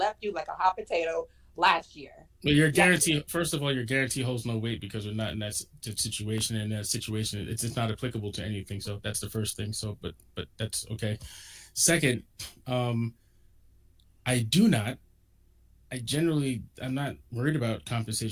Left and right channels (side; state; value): both; identical; correlation 1.00